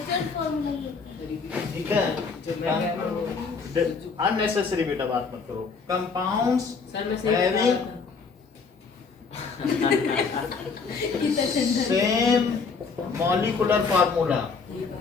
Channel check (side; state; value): right; quieter; 5.0 dB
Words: फार्मूला? ठीक है, अननेसेसरी बेटा बात मत करो। कंपाउंड्स सर मैं सही हैविंग बता same molecular formula